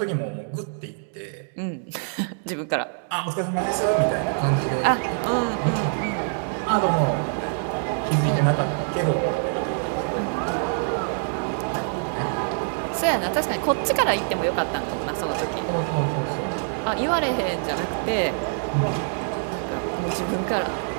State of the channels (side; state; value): left; silent; 62 dB below the other